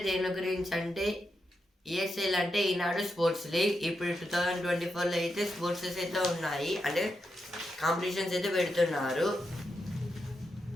దేని గురించి అంటే ESL అంటే ఈనాడు స్పోర్ట్స్ లీగ్. ఇప్పుడు 2024లో అయితే స్పోర్ట్సెస్ అయితే ఉన్నాయి, అంటే కాంపిటీషన్స్ అయితే పెడుతున్నారు.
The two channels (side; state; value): both; normal; correlation 0.86